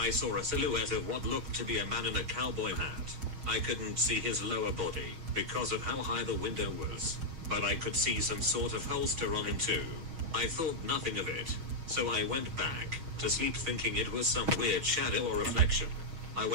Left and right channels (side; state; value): left; late; 6.3 ms